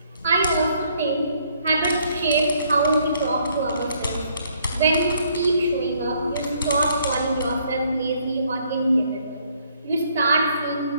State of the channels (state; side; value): inverted; both; correlation -0.67